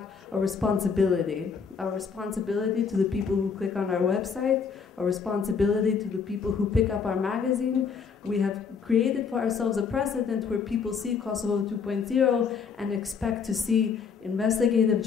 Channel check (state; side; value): quieter; right; 6.0 dB